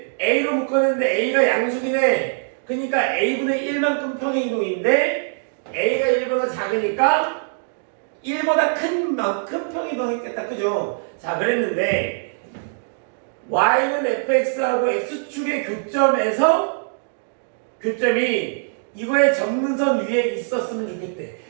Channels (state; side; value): silent; left; digital silence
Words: A로 묶었는데 A가 양수긴 해. 그러니까 A분의 1만큼 평행이동인데 A가 1보다 작으니까 1보다 큰 만큼 평행이동했겠다. 그죠? 자, 그랬는데 Y는 fx하고 x축의 교점이 이거의 점근선 위에 있었으면 좋겠대.